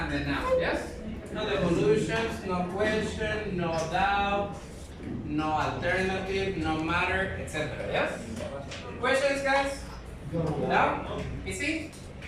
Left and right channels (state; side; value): identical; both; correlation 1.00